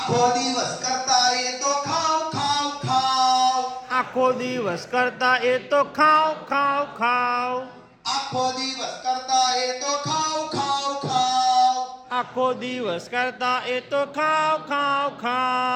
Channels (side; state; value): both; identical; correlation 1.00